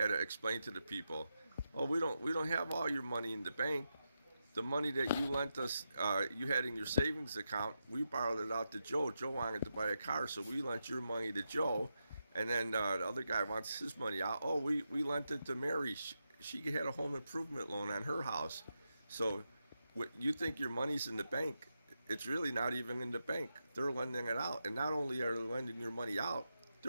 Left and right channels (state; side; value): inverted; both; correlation -0.87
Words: to explain to the people, "Oh, we don't have all your money in the bank. The money that you lent us, you had in your savings account, we borrowed it out to Joe. Joe wanted to buy a car, so we lent your money to Joe, and then the other guy wants his money out. Oh, we lent it to Mary. She had a home improvement loan on her house. So you think your money's in the bank? It's really not even in the bank. They're lending it out, and not only are they lending your money out,